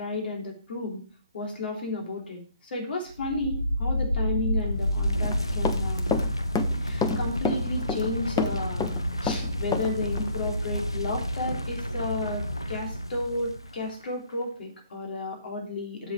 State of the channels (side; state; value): both; inverted; correlation -0.58